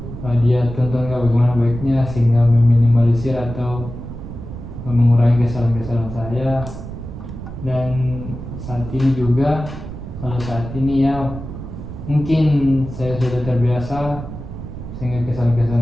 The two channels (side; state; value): right; noise; rumble, 10 dB below the sound